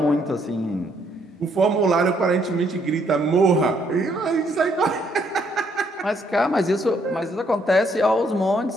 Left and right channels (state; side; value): normal; both; correlation 0.70